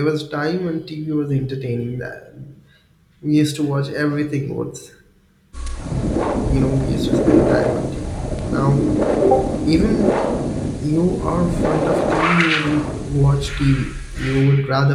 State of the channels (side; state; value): both; identical; correlation 1.00